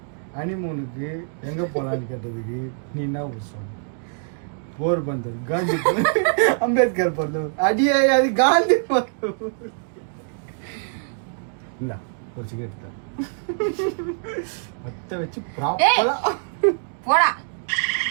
ஹனிமூனுக்கு எங்க போலான்னு கேட்டதுக்கு நீ என்ன சொன்ன? போர்பந்தர் காந்தி அம்பேத்கர் பந்தம் அடியே அது காந்தி பந்தம் இல்ல ஒரு சிகரெட் தான் மொத்த வச்சு ப்ராப்பரா போடா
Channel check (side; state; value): left; silent; digital silence